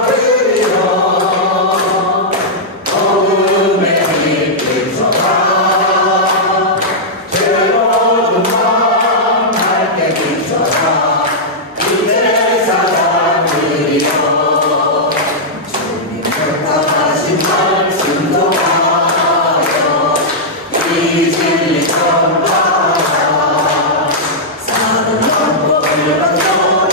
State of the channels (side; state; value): both; normal; correlation -0.08